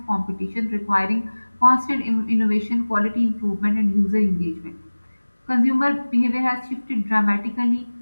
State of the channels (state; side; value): inverted; both; correlation -1.00